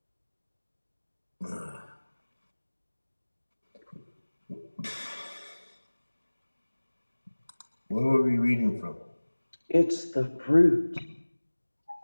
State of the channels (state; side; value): inverted; both; correlation -1.00